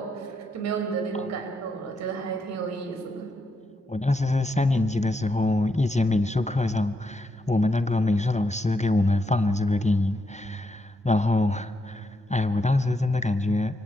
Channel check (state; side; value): normal; both; correlation 0.80